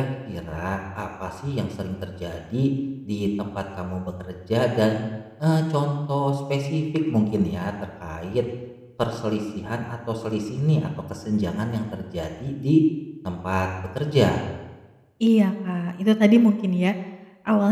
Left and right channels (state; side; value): identical; both; correlation 1.00